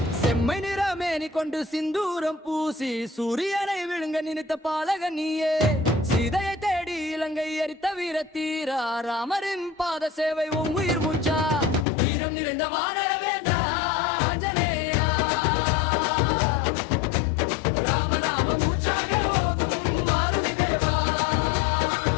செம்மை நிறமேனி கொண்டு சிந்தூரம் பூசி சூரியனை விழுங்க நினைத்த பாலகன் நீயே சீதையை தேடி இலங்கை எரித்த வீரத்தீரா ராமரின் பாத சேவை உன் உயிர் மூச்சா வீரம் நிறைந்த வானர வேண்டா ஆஞ்சநேயா ராமநாம மூச்சாக ஓதும் மாருதி தேவா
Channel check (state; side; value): drops out; right; at 11.9 s